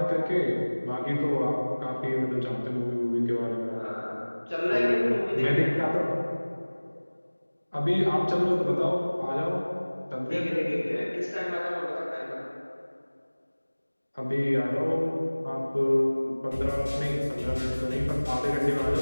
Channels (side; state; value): both; inverted; correlation -1.00